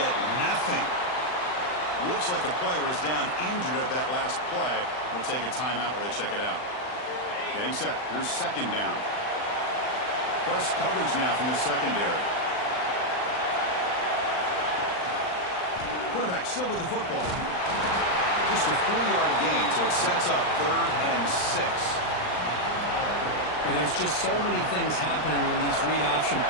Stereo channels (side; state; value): right; late; 39 ms